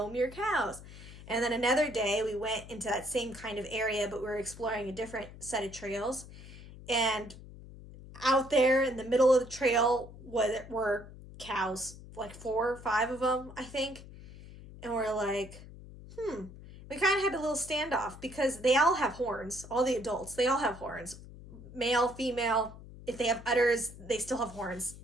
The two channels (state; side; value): noise; left; hum, 16 dB below the sound